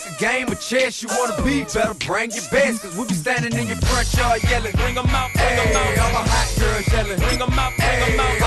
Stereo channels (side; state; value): both; identical; correlation 1.00